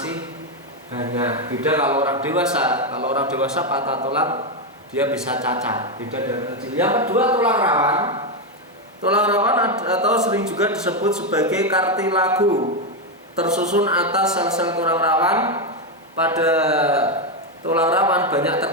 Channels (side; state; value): both; normal; correlation 0.06